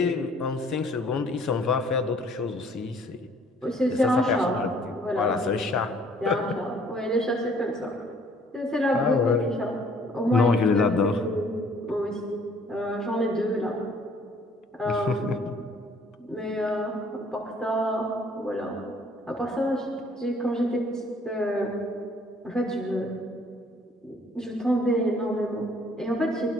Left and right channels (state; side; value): normal; both; correlation 0.59